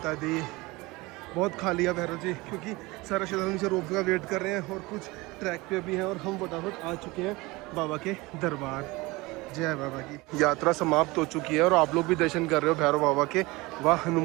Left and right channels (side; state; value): left; quieter; 22.5 dB